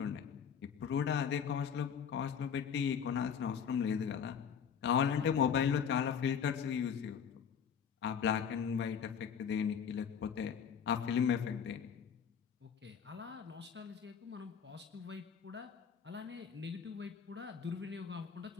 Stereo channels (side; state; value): right; quieter; 7.4 dB